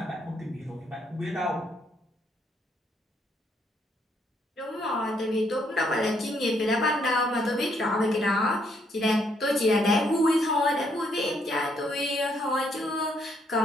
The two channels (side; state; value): both; normal; correlation 0.72